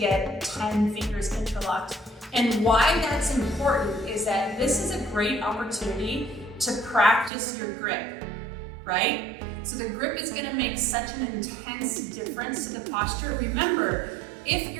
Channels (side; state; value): left; drops out; at 7.3 s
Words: 10 fingers interlocked. And why that's important is that this is a great opportunity to practice your grip, right? So the grip is going to make such an intense difference to the posture. Remember, if